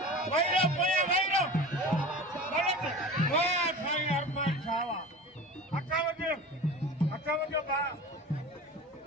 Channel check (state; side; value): normal; both; correlation 0.35